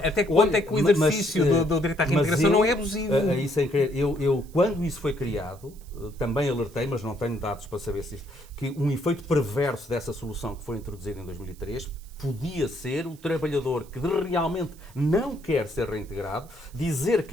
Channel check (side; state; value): right; noise; hiss, 25 dB below the sound